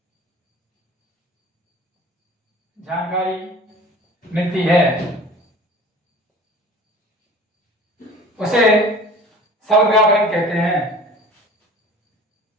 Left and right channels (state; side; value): normal; both; correlation 0.43